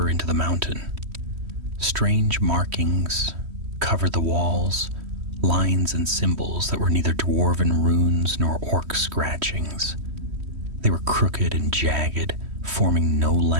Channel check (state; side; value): late; left; 3.1 ms